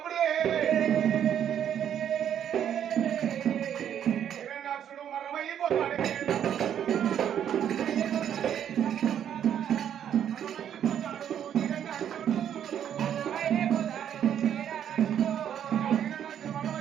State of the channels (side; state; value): left; quieter; 9.5 dB